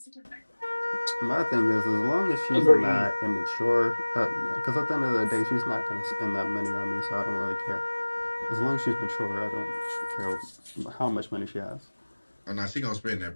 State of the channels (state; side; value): inverted; both; correlation -1.00